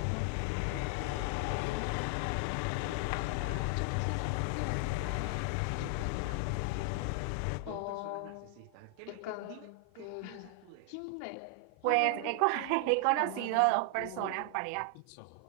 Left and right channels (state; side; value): different; both; correlation 0.00